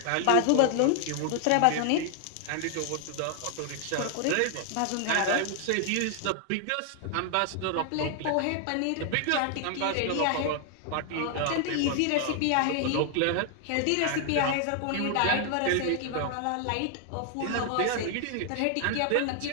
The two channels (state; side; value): different; both; correlation 0.00